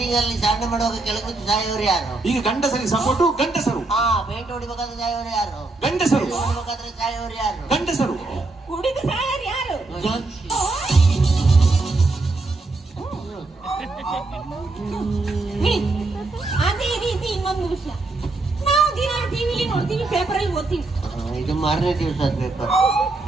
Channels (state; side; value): quieter; left; 3.3 dB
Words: ಅಲ್ಲಿ ಸಾಧನೆ ಮಾಡುವಾಗ ಕೆಳಗೆ ಸಾಯೋರು ಯಾರು? ಈಗ ಗಂಡಸರಿಗೆ ಸಪೋರ್ಟು ಗಂಡಸರು. ಪೇಂಟ್ ಹೊಡಿಬೇಕಾದ್ರೆ ಸಾಯೋರು ಯಾರು? ಗಂಡಸರು. ಹೊಡಿಬೇಕಾದ್ರೆ ಸಾಯೋರು ಯಾರು? ಗಂಡಸರು. ಕುಡಿದು ಸಾಯರ್ ಯಾರು? ಅದೇ ರೀತಿ ಇನ್ನೊಂದು ವಿಷಯ, ನಾವು ದಿನ ಟಿವಿಲಿ ನೋಡ್ತೀವಿ, ಪೇಪರ್ ಅಲ್ಲಿ ಓದ್ತೀವಿ. ಇದು ಮಾರನೇ ದಿವಸ ಪೇಪರ್.